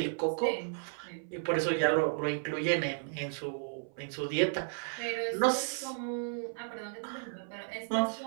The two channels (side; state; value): left; silent; 55 dB below the other